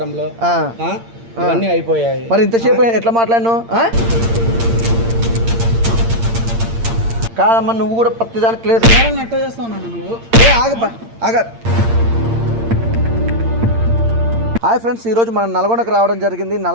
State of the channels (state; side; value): late; left; 8.7 ms